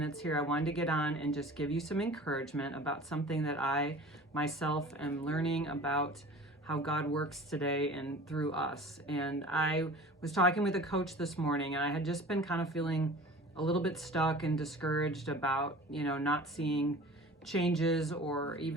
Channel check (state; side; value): normal; both; correlation 0.42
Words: here. I wanted to get on and just give you some encouragement about something that I myself am learning about how God works today and through us. And I was talking with a coach this morning, and I had just been kind of feeling a little bit stuck and discouraged about, not seeing changes or